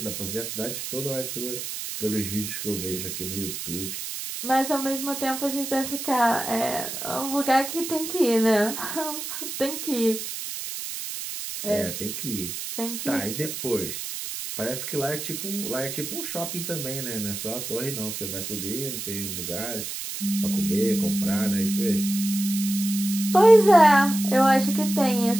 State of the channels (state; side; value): noise; right; hiss, 6 dB below the sound